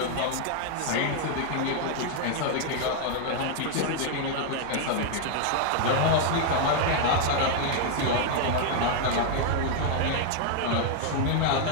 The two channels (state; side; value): different; both; correlation 0.00